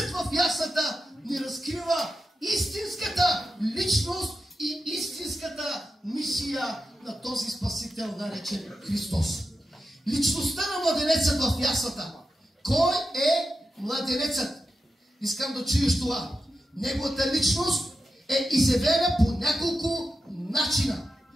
в яслата ни разкрива истинската личност и истинската мисия на този Спасител, наречен Христос. Личността на младенецът в яслата. Кой е младенецът? Искам да чуеш това. Неговата личност е изявена по няколко начина.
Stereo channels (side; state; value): both; normal; correlation 0.90